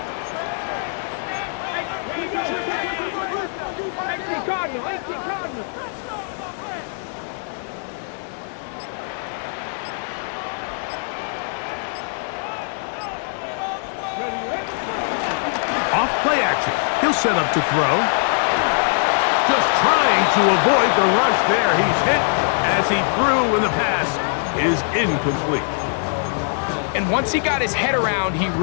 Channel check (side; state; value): right; silent; digital silence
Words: Off play action. He'll set up to throw. Just trying to avoid the rush there. He's hit as he threw, and the pass is incomplete. And once he got his head around, he